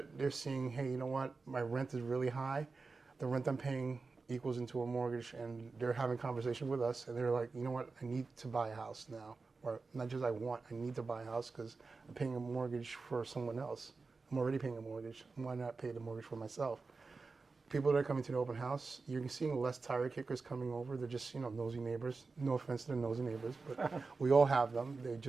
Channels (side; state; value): left; quieter; 4.2 dB